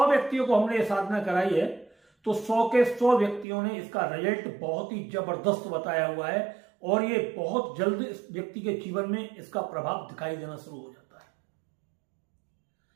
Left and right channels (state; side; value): drops out; left; at 3.5 s